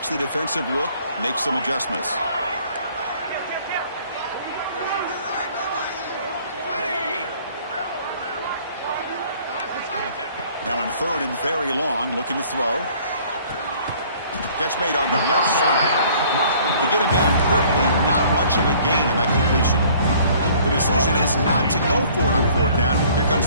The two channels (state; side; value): inverted; both; correlation -0.55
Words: the defensive look, makes some adjustments. Now in third and very long, looking to throw. Catch made on the left side. To get him down quickly, not much of a gain on that completion. The decision is not to go for it on fourth down. Here